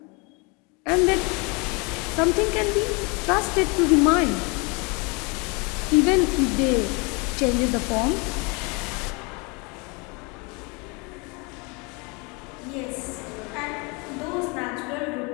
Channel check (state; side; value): quieter; right; 30.0 dB